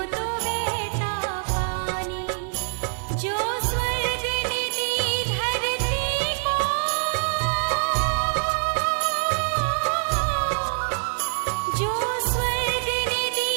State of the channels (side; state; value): left; silent; digital silence